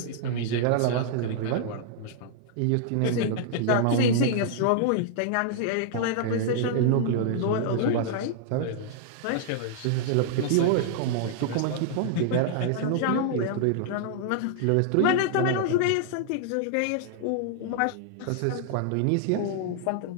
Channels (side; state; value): both; different; correlation -0.01